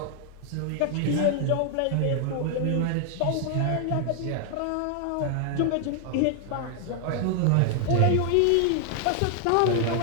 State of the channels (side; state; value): both; different; correlation 0.00